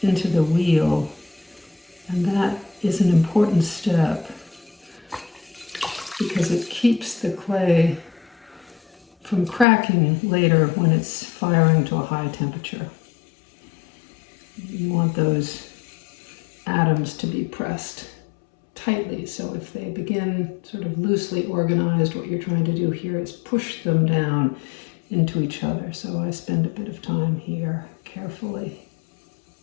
into the wheel, and that is an important step because it keeps the clay from cracking later when it's firing to a high temperature. You want those atoms to be pressed tightly, so if they begin sort of loosely organized, what you're trying to do here is push them down into each other. So I spend a bit of time here carefully.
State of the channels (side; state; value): right; drops out; at 9.7 s